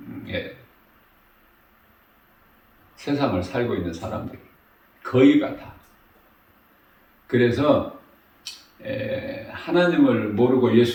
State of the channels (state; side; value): identical; both; correlation 1.00